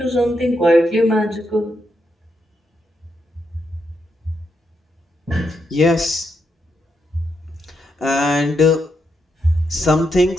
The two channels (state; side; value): normal; both; correlation 0.81